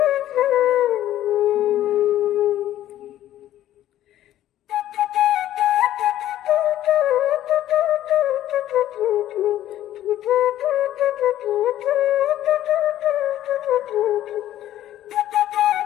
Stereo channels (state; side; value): quieter; right; 12.8 dB